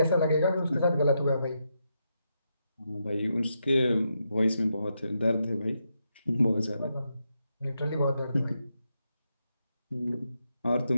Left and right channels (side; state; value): both; inverted; correlation -0.83